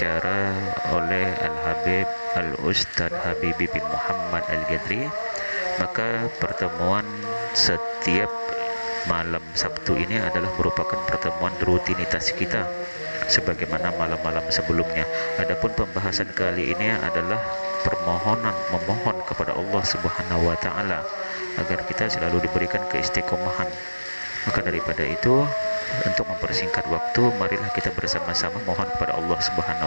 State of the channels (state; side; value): inverted; both; correlation -1.00